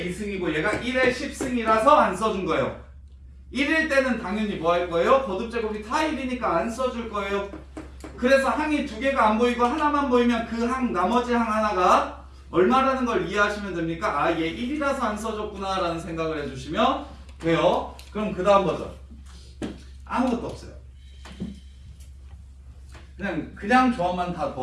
2승이고 얘가 1의 10승이라서 안 써준 거예요. 1일 때는 당연히 뭐 할 거예요? 거듭 제곱이 다 1이니까 안 써줄 거예요. 그래서 항이 두 개가 안 보이고 하나만 보이면 그 항 나머지 항 하나가 얼마라는 걸 이해하시면 됩니까? 아, 얘 1이라서 안 써줬구나 라는 생각을 해주시면 돼요. 그럼 그 다음 버전 아무것도 없어요. 그냥 조합만 다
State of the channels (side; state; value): both; identical; correlation 1.00